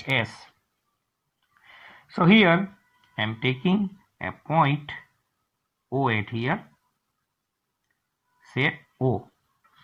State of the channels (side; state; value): both; identical; correlation 1.00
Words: So here I am taking a point O at here, say O.